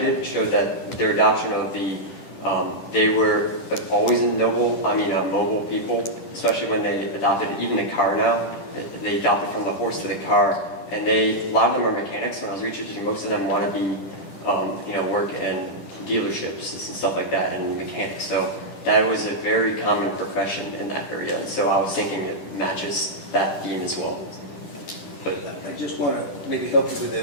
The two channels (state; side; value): late; right; 10 ms